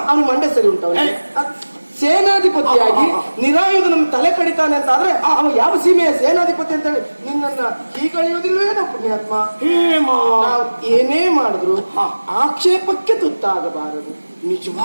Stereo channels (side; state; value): both; inverted; correlation -1.00